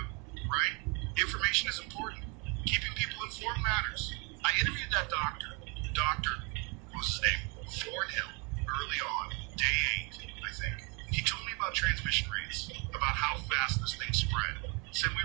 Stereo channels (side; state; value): left; quieter; 31.3 dB